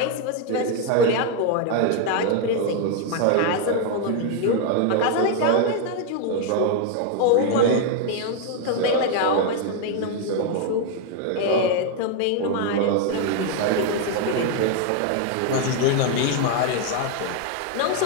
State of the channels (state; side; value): different; both; correlation 0.01